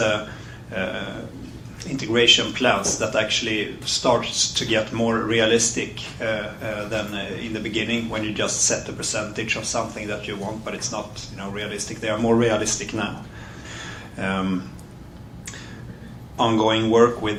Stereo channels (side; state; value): both; identical; correlation 1.00